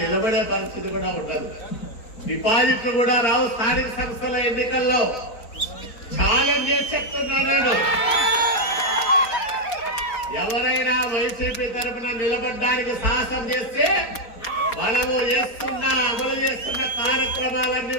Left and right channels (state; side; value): late; right; 4.2 ms